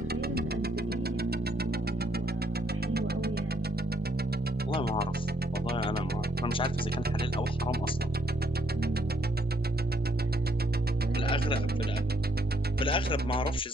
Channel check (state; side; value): normal; both; correlation 0.71